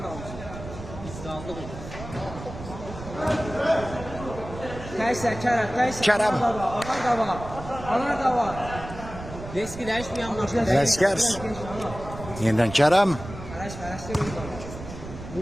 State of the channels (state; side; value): noise; right; rumble, 12 dB below the sound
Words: Kayser, Kerem. Anar da var. Riski değişmeyen maçlar. Ələskər. Yeniden Kerem.